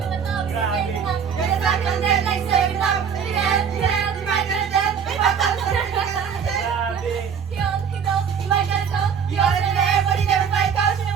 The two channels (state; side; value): quieter; left; 7.1 dB